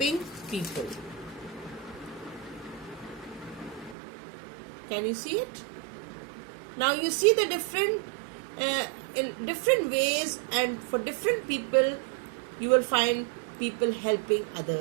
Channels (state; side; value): drops out; left; at 4.0 s